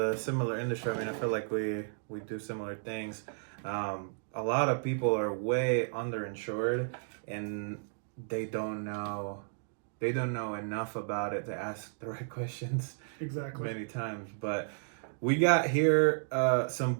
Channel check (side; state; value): left; silent; digital silence